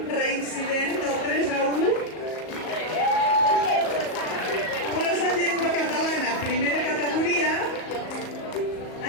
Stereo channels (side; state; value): right; late; 38 ms